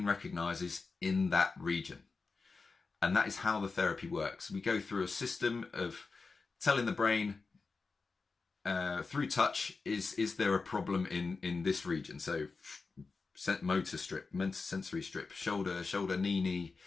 recognizes in that region. And that is how the therapy works. We go through a system of telling the brain through touch, is there a problem in this region? So motor strip, sensory strip, shoulder, knee,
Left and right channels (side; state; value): right; quieter; 4.3 dB